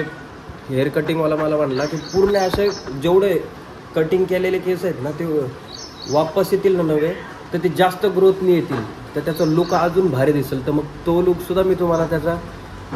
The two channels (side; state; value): both; identical; correlation 1.00